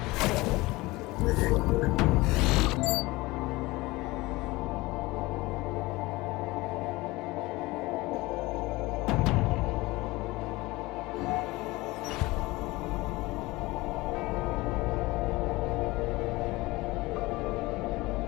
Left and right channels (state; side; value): quieter; right; 21.1 dB